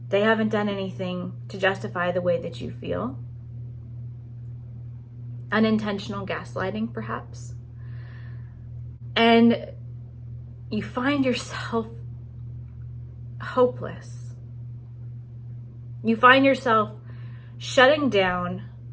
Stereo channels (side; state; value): both; identical; correlation 1.00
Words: They haven't done anything to justify the way that you feel. Unintentional gaslighting, perhaps. And you find yourself hopeless. You find yourself shutting down